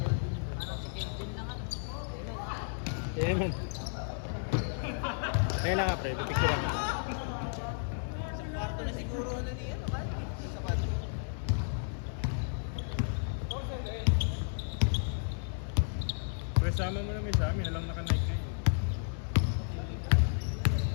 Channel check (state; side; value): silent; right; digital silence